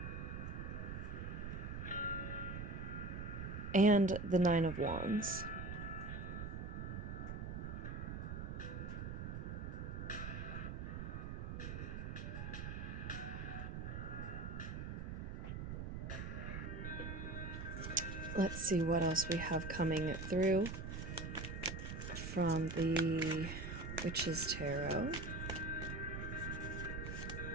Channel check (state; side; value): noise; right; rumble, 5 dB below the sound